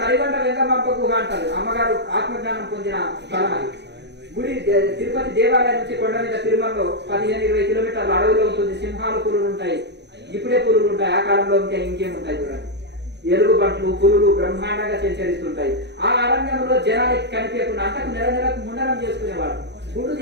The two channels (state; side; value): late; left; 0.50 ms